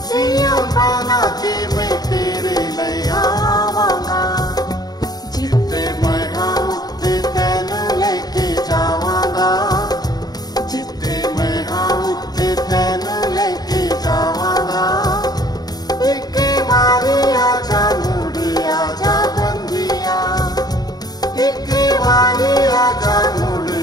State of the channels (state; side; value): late; right; 0.19 ms